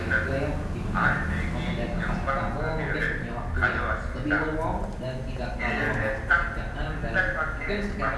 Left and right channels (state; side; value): identical; both; correlation 1.00